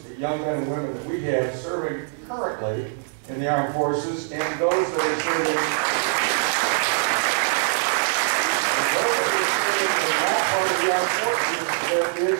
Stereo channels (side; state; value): left; silent; digital silence